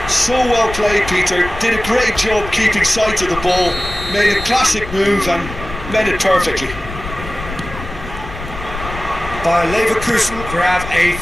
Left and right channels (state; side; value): noise; left; rumble, 11 dB below the sound